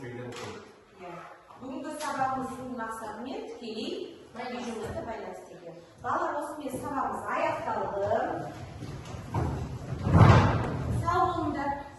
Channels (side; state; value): both; identical; correlation 1.00